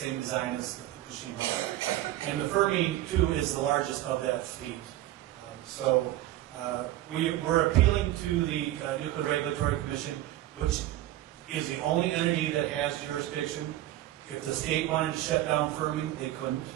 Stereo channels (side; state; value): left; quieter; 14.5 dB